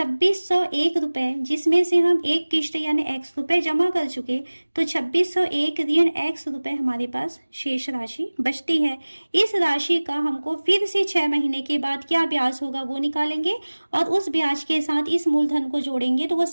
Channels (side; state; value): both; inverted; correlation -1.00